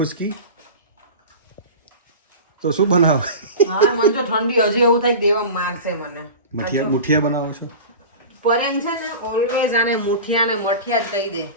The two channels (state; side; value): inverted; both; correlation -0.33